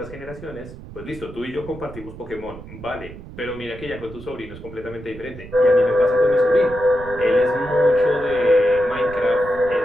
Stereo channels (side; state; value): right; noise; rumble, 15 dB below the sound